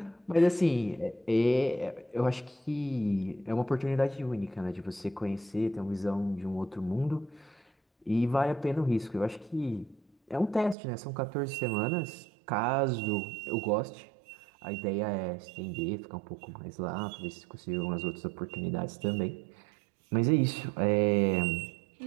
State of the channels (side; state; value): left; drops out; at 10.8 s